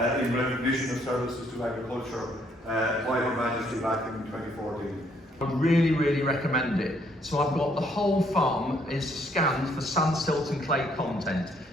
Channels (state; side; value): normal; both; correlation 0.68